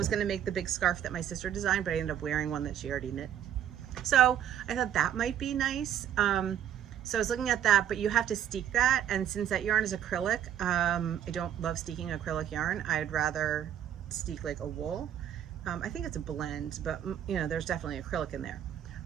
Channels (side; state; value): left; quieter; 10.2 dB